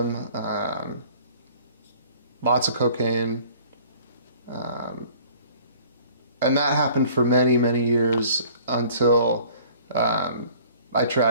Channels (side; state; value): both; inverted; correlation -0.52